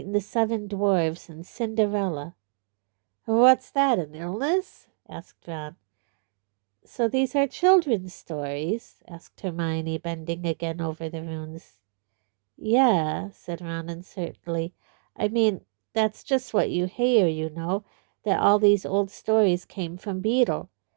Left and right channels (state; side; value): silent; left; digital silence